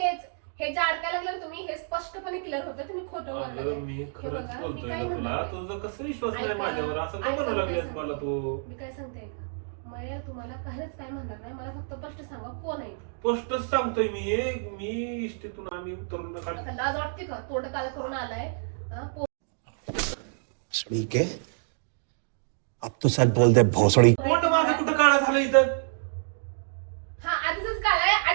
हे जे अडकायला लागलं तुम्ही हे स्पष्टपणे क्लिअर होतं तुम्ही खोटं अगं बोलताय. मी हे खरंच बघा, मी बोलतोय काय ना तुला म्हणते? तुझा कसं विश्वास नाही ऐका, माझ्यावर असं का ऐका, म्हणू मी लागलीस काय मला तू मी काय सांगते का मला तुम्हाला काहीच काय म्हणणार नाही मला फक्त स्पष्ट सांगा कोण आहे ते. स्पष्टच सांगतोय मी इष्टीतून आम्ही उतरून आता लाज वाटते का तोंड काळ करून आलाय हा, भोसड़ी के अब तो सच बोल दे भोसड़ी पोट माझं कुठं काळा झालं इथं हा आधीच काय आहे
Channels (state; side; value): silent; left; digital silence